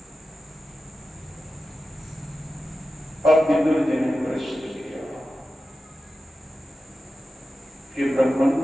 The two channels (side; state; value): both; normal; correlation 0.93